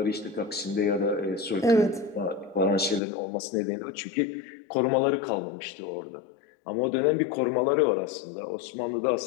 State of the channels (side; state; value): right; drops out; at 3.0 s